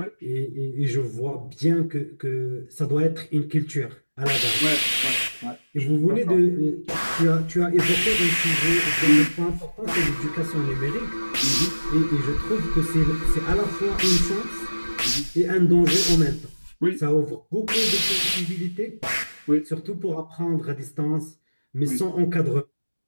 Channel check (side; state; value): both; inverted; correlation -1.00